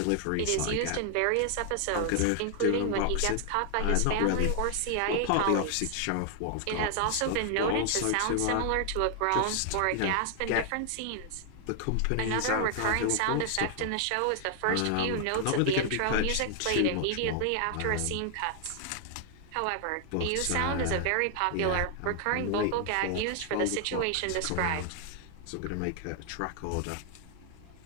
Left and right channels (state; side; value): different; both; correlation 0.00